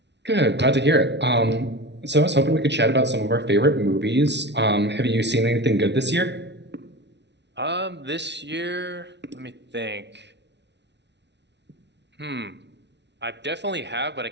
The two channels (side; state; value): left; late; 0.50 ms